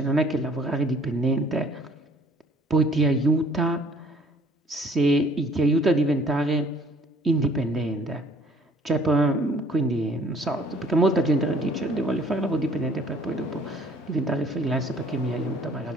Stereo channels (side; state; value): both; normal; correlation 0.57